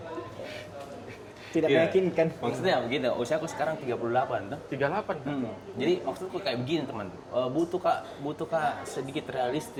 Tidak Iya. meyakinkan. Maksudnya begini, usiaku sekarang 38 tuh. 38 kan? Jadi maksudku kayak begini teman, butuh kak sedikit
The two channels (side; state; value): both; identical; correlation 1.00